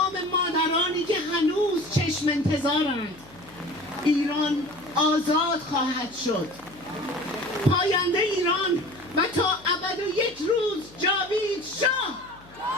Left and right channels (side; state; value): left; noise; hum, 24 dB below the sound